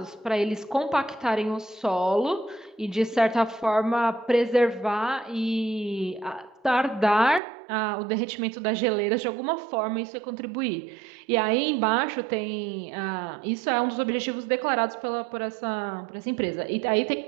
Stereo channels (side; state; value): left; drops out; at 7.4 s